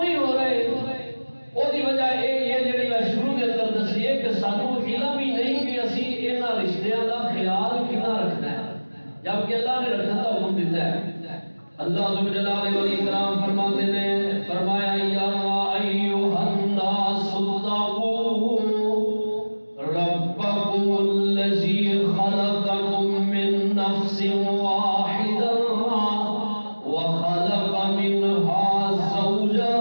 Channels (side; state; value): both; inverted; correlation -1.00